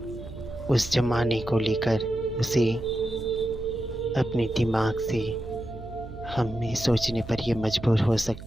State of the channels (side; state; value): right; noise; hum, 13 dB below the sound